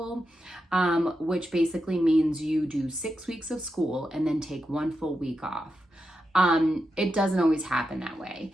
which basically means you do 6 weeks of school and then take 1 full week off. It doesn't always happen that way.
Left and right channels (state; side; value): normal; both; correlation 0.87